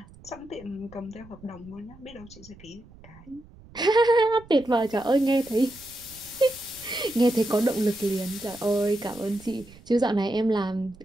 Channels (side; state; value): right; noise; rumble, 22 dB below the sound